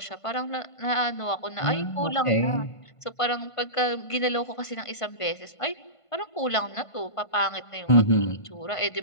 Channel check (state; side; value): late; right; 1.5 ms